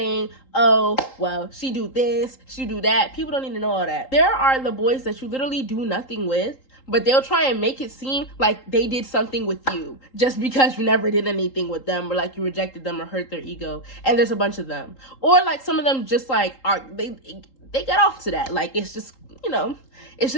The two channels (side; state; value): right; late; 3.8 ms